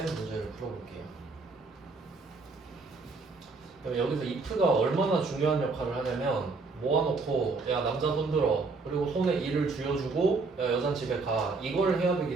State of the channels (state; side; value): quieter; left; 4.0 dB